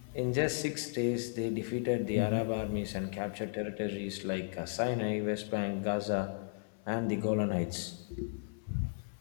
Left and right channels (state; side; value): silent; right; 54 dB below the other